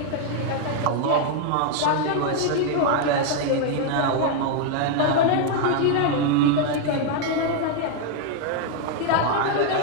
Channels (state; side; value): different; both; correlation 0.00